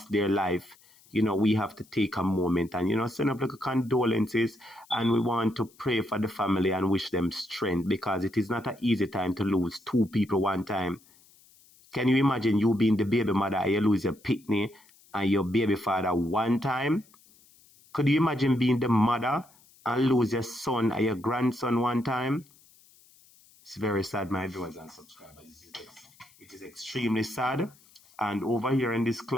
their life, you know, we have to take a moment and, you know, send up like a condolences, and we want to pray for the family and wish them strength, because it is not an easy time to lose 2 people one time. Can you imagine you being the baby mother and you lose your pitney and your baby father one time? Could you imagine being the mother and lose your son and your grandson one time? It's very sad, my viewers and subscribers. It is extremely sad. And over here in this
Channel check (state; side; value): noise; left; hiss, 28 dB below the sound